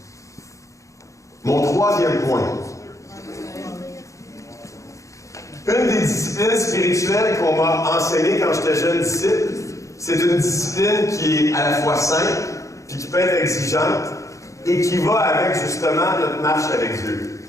Mon troisième point. Une des disciplines spirituelles qu'on m'a enseignées quand j'étais jeune disciple, c'est une discipline qui est à la fois simple, puis qui peut être exigeante, et qui va avec justement notre marche avec Dieu.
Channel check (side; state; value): right; late; 0.15 ms